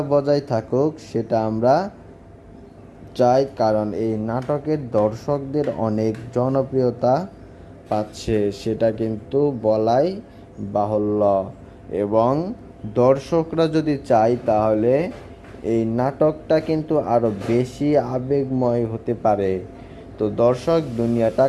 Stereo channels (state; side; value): identical; both; correlation 1.00